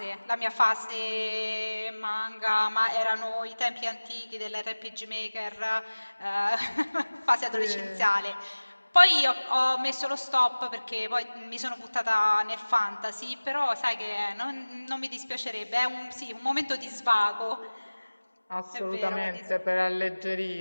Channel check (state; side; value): inverted; both; correlation -1.00